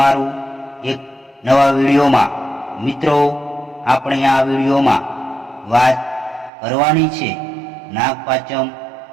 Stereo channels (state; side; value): drops out; left; at 6.5 s